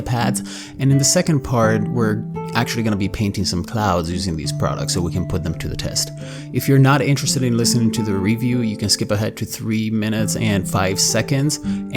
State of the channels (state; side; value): identical; both; correlation 1.00